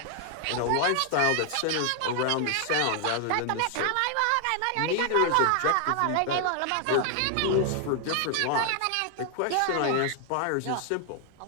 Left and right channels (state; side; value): different; both; correlation 0.00